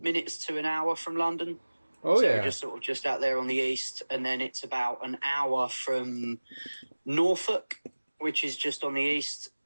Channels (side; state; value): both; inverted; correlation -1.00